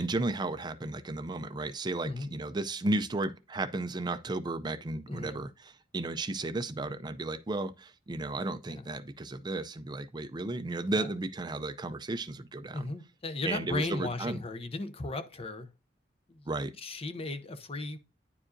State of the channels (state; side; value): normal; both; correlation 0.57